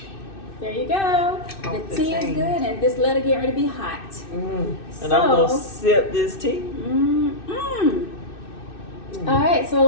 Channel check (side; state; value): right; late; 2.6 ms